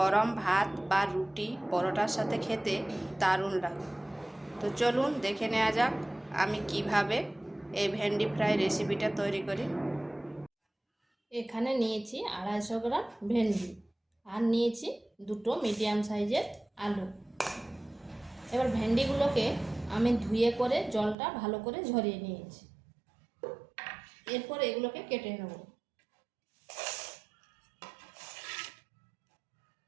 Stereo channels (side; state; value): left; drops out; at 21.2 s